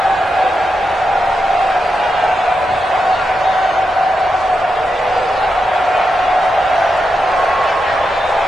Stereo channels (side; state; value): both; normal; correlation 0.86